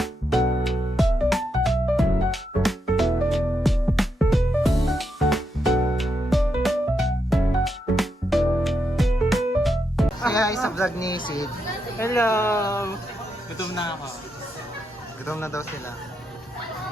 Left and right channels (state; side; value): normal; both; correlation 0.82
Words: Kaya isa vlog ni Sid. Hello! Gutom na ako. Gutom na daw sila.